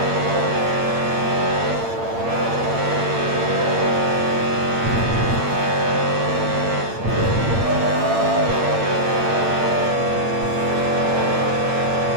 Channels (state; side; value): late; left; 8.8 ms